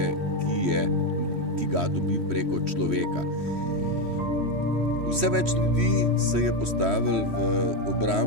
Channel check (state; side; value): late; left; 3.1 ms